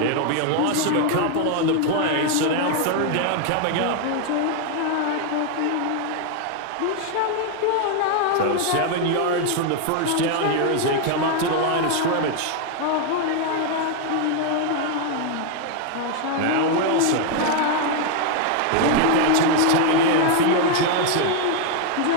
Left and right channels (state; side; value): different; both; correlation 0.00